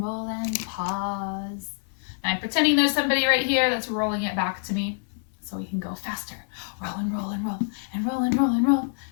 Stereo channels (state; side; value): silent; right; digital silence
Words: roll, and pause. And I'm pretending there's somebody right here that's rolling it back to me so we can go faster. Roll and roll and roll, and roll and roll and roll,